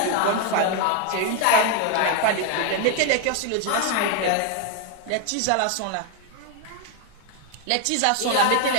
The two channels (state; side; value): different; both; correlation 0.01